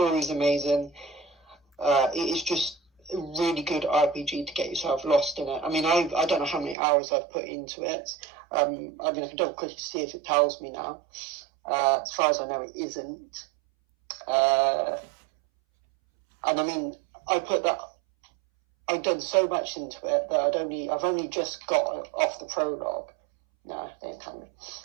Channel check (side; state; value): left; drops out; at 6.8 s